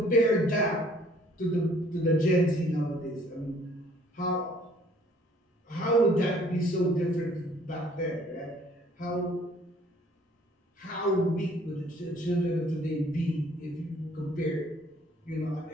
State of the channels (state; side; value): normal; both; correlation 0.58